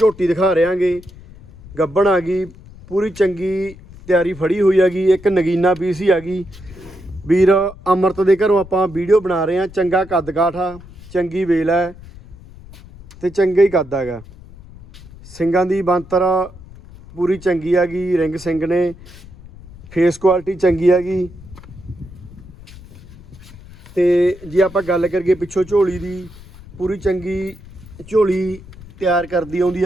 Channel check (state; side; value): noise; left; rumble, 19 dB below the sound